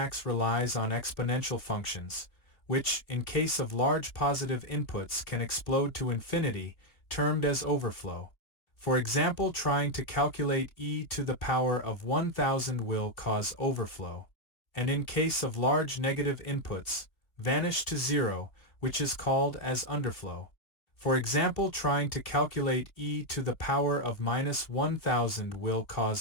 relies on exponential functions, which, in case of large positive inputs, can explode to infinity, termed as overflow. For example, trying to calculate e to the power of 1000 will cause overflow, and in case of large negative inputs, vanish to zero, which is called as underflow. For example, trying to calculate e to the power of minus 1000 will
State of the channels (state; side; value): late; right; 2.8 ms